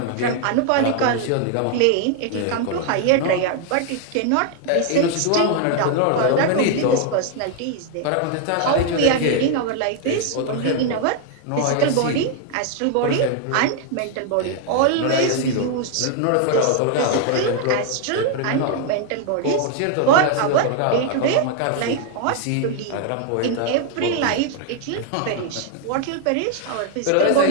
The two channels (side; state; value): both; different; correlation 0.00